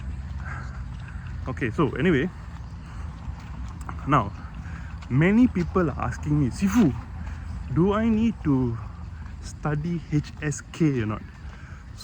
Okay, so anyway, now many people are asking me, Sifu, do I need to study HSK or not?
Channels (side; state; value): both; identical; correlation 1.00